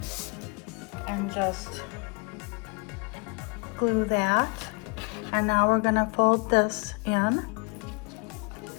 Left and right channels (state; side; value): quieter; right; 31.8 dB